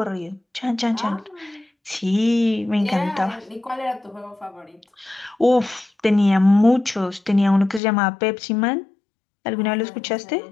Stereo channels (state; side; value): drops out; right; at 7.8 s